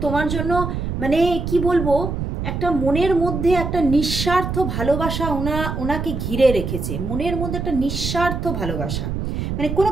তোমার জন্য মানে কি বলবো, একটা মনের মধ্যে একটা নিঃস্বার্থ ভালোবাসা ওনাকে ঘিরে রেখেছে, মনের মধ্যে একটা নিঃস্বার্থ ভালোবাসা, মানে কোনো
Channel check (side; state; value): right; noise; rumble, 4 dB below the sound